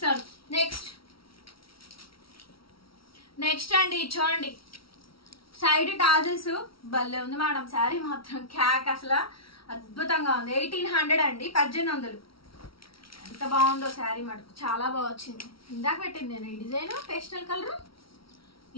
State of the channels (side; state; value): right; late; 0.75 ms